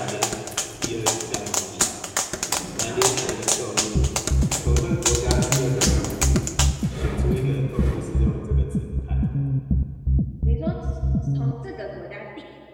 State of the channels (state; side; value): identical; both; correlation 1.00